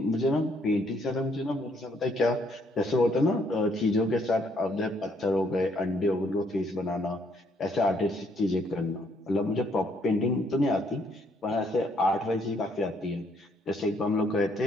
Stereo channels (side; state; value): both; normal; correlation 0.69